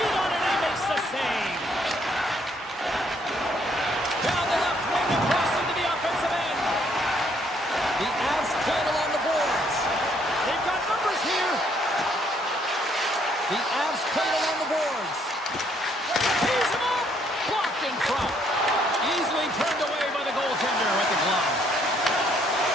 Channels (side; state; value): both; normal; correlation 0.68